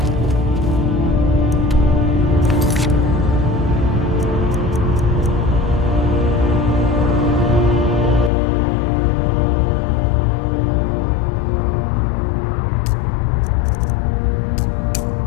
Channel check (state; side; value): drops out; right; at 8.3 s